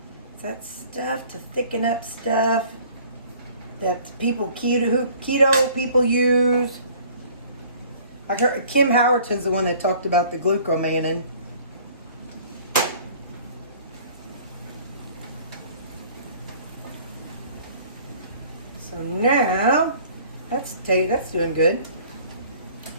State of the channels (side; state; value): both; inverted; correlation -0.52